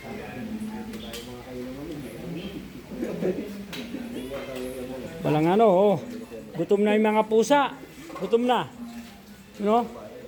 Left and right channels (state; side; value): identical; both; correlation 1.00